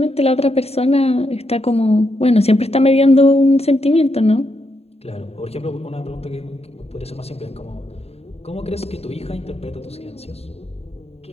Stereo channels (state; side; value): late; right; 0.30 ms